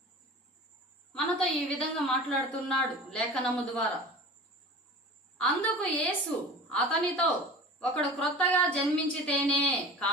మనతో ఈ విధంగా మాట్లాడుతున్నాడు లేఖనము ద్వారా. అందుకు యేసు అతనితో, ఒకడు క్రొత్తగా జన్మించితేనే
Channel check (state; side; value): normal; both; correlation 0.37